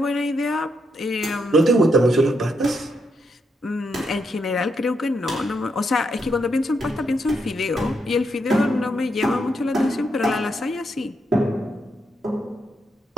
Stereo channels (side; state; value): both; normal; correlation 0.80